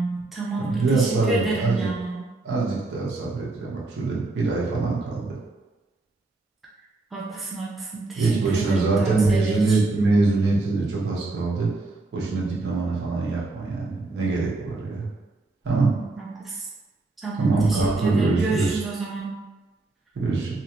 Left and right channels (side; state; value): left; quieter; 3.1 dB